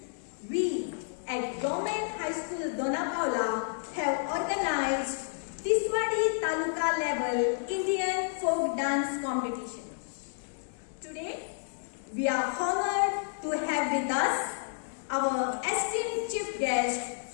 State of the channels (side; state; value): right; silent; 57 dB below the other